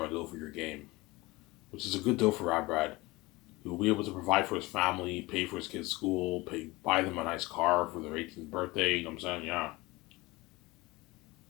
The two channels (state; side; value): quieter; right; 21.8 dB